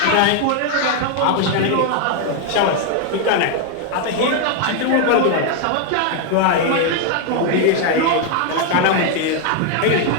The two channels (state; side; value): different; both; correlation 0.01